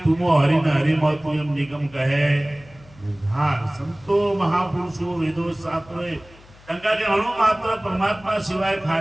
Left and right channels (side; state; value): left; noise; hum, 24 dB below the sound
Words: तुमो हरि न हरि म तू एम निगम कहे बुधार संतो महापुरुषो वेदो शास्त्रोए तंका के अणु मात्र परमात्मा सिवाय